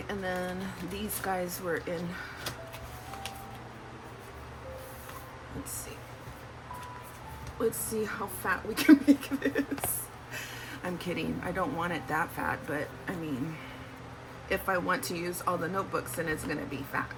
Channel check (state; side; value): identical; both; correlation 1.00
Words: and then these guys were in, let's see how fat we can make this. I'm kidding, I don't want it that fat, but I mean, if I want to use all the notebooks, then it's gonna be fat,